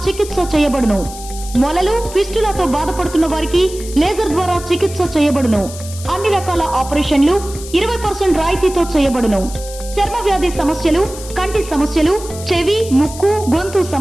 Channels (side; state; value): left; noise; hiss, 14 dB below the sound